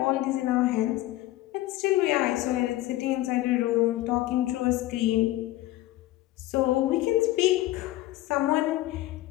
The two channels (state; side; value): quieter; right; 16.4 dB